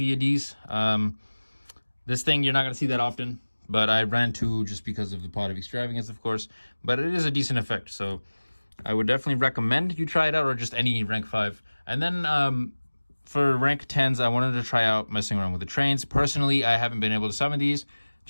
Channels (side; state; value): both; inverted; correlation -1.00